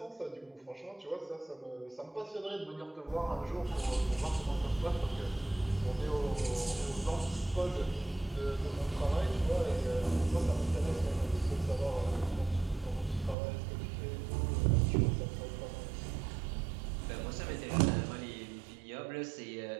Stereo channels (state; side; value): drops out; left; at 13.4 s